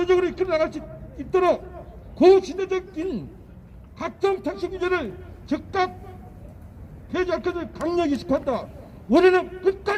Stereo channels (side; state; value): both; identical; correlation 1.00